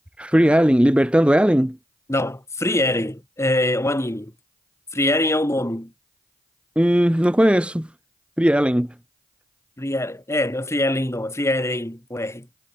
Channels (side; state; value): both; normal; correlation 0.85